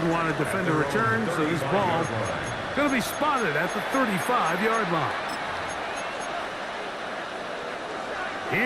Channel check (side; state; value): both; identical; correlation 1.00